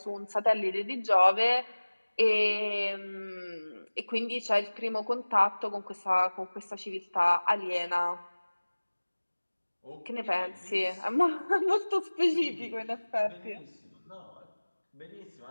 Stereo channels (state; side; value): inverted; both; correlation -1.00